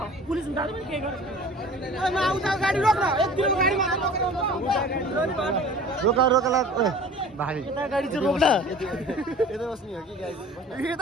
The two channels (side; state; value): both; normal; correlation 0.43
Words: पुलिस हुँदा पनि केही गर्छ रोका रोका भारी गाडी चाहिँ रोक्न यता बस्ने हो कि गाडी